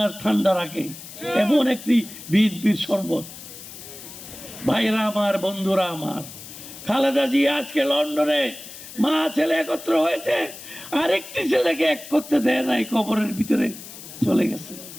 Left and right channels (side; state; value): left; noise; hiss, 14 dB below the sound